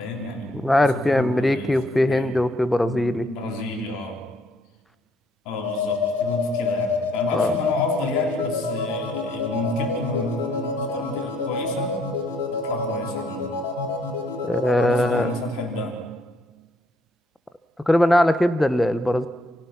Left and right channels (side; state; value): both; normal; correlation 0.69